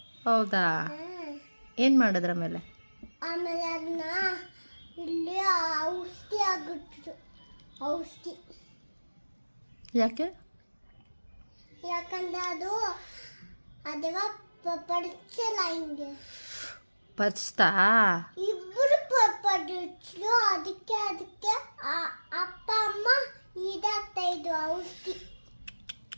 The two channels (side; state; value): both; inverted; correlation -1.00